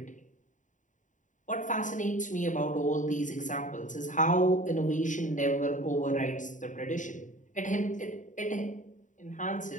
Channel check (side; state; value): right; late; 0.37 ms